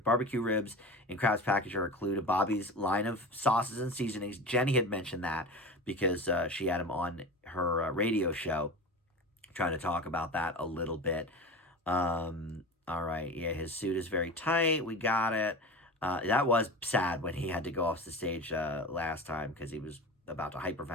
barbecue ribs in Crab's package are a clue to Bobby's line of sauces and seasonings. Jenny had mentioned that because she had him on her radio show trying to talk about that a little bit. All right, yeah, his suit is very tight. We got it. That was sad when he had to go off the stage last time because he was about to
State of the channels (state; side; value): normal; both; correlation 0.31